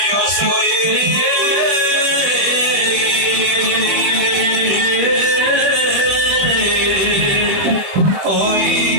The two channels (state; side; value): late; left; 21 ms